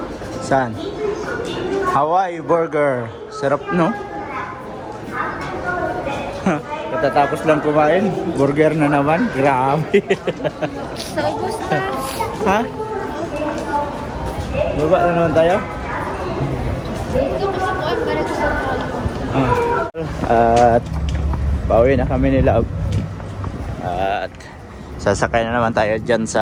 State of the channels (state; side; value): identical; both; correlation 1.00